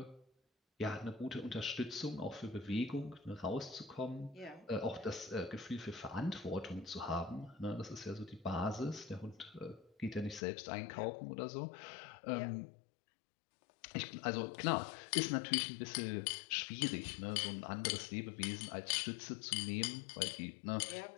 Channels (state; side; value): drops out; right; at 10.4 s